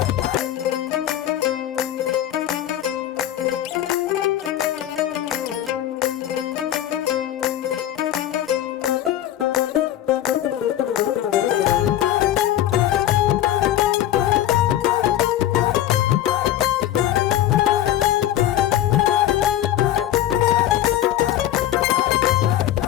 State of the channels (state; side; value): quieter; right; 12.5 dB